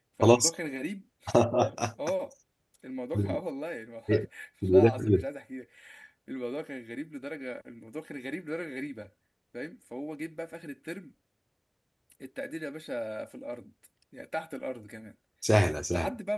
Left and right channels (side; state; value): both; identical; correlation 1.00